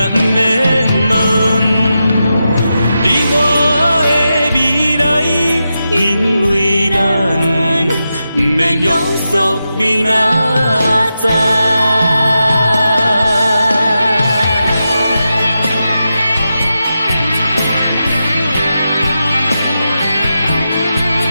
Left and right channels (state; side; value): inverted; both; correlation -0.89